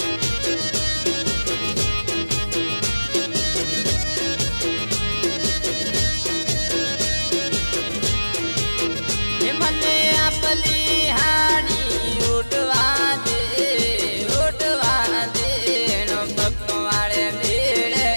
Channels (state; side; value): inverted; both; correlation -1.00